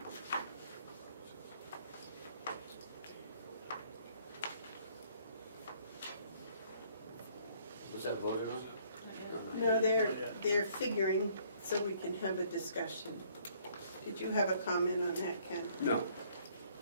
Was that voted on? No, they're figuring so we can have a discussion. Did you have a comment on that, Ken? No.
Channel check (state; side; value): inverted; both; correlation -0.62